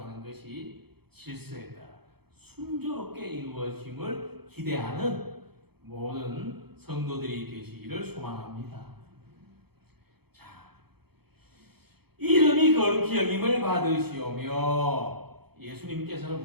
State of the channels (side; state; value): left; late; 0.96 ms